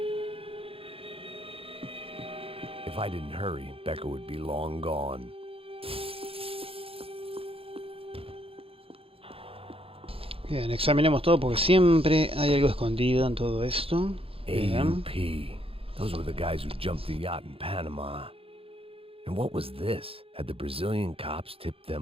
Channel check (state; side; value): late; left; 0.27 ms